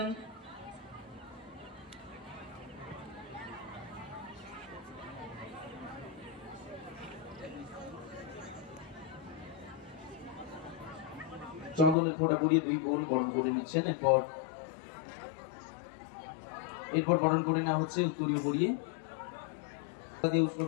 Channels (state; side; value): drops out; right; at 12.0 s